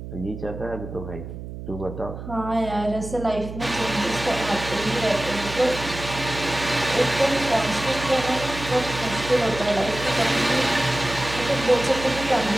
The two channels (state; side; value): noise; right; hum, 10 dB below the sound